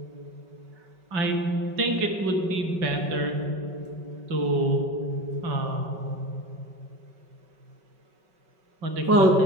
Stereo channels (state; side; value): late; left; 5.3 ms